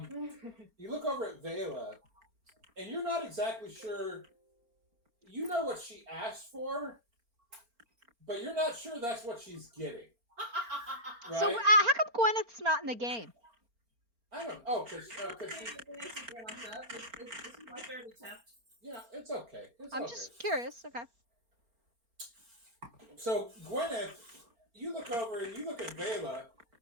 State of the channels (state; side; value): late; left; 4.3 ms